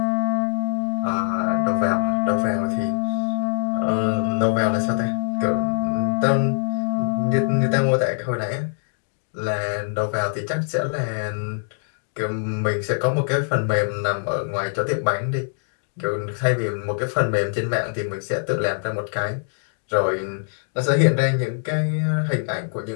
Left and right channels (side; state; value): right; silent; digital silence